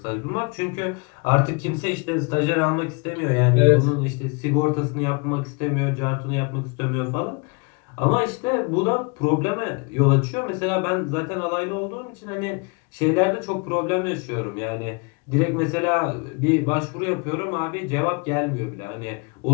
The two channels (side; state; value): right; quieter; 32.5 dB